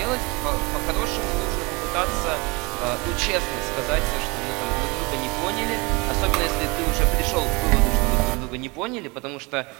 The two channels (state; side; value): quieter; left; 26.8 dB